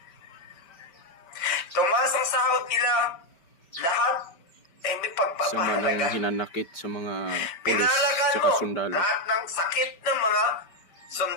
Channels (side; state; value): right; late; 5.2 ms